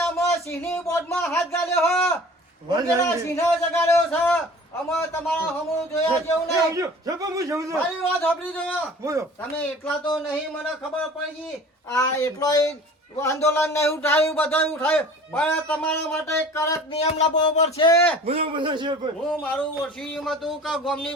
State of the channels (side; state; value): both; normal; correlation 0.44